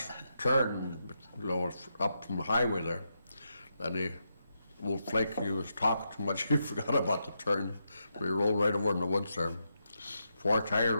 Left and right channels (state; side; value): inverted; both; correlation -0.84